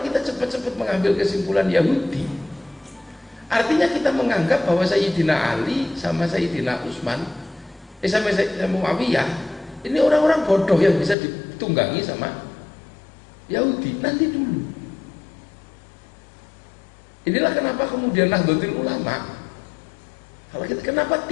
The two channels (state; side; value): drops out; right; at 11.2 s